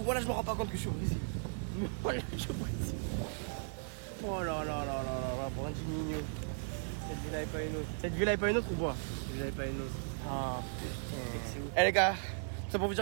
je me rends pas compte que je suis au Brésil. Voilà, je suis au Brésil. Oh là, Brandinho. Cette villa est pas une autre. Cette villa est pas une autre ou quoi? Cette villa est pas une autre. Ah putain. Eh les gars, c'est pour vous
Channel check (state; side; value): silent; left; digital silence